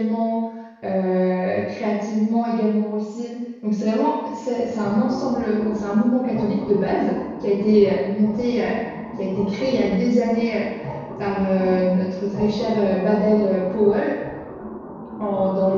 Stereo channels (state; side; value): identical; both; correlation 1.00